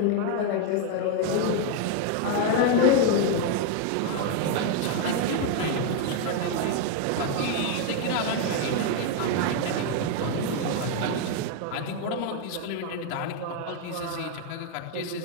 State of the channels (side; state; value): both; different; correlation 0.01